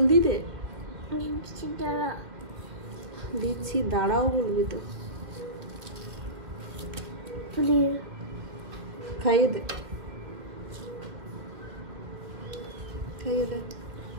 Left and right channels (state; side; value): late; left; 1.9 ms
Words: দে। দিচ্ছি, দাঁড়াও বলবি তো। খাইয়ে দে, খাইয়ে দে,